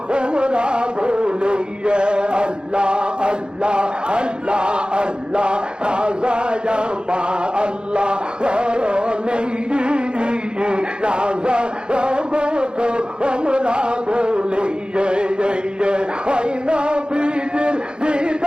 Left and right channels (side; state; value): left; late; 0.049 ms